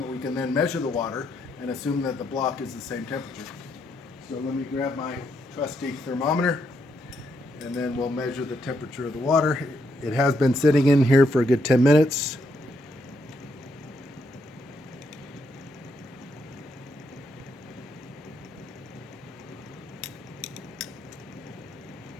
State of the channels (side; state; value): both; normal; correlation 0.77